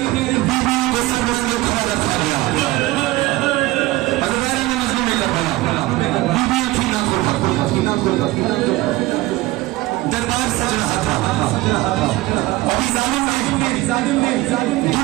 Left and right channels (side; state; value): left; quieter; 18.7 dB